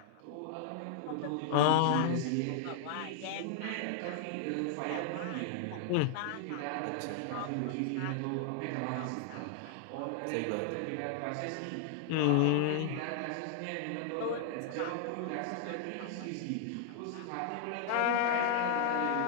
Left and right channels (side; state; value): both; different; correlation 0.00